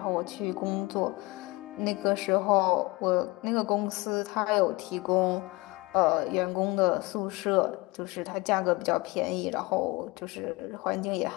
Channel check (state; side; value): quieter; right; 23.3 dB